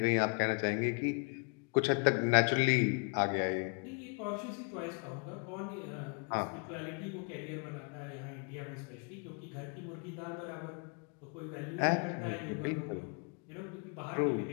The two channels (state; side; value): quieter; right; 37.7 dB